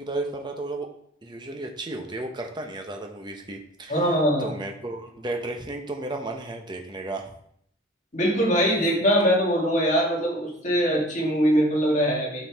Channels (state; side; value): normal; both; correlation 0.45